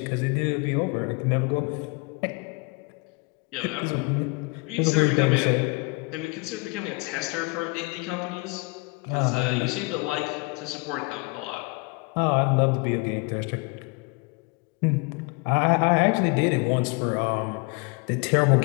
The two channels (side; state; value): right; quieter; 28.3 dB